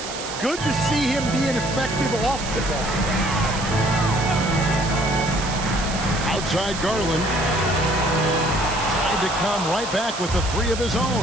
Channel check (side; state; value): right; noise; hiss, 9 dB below the sound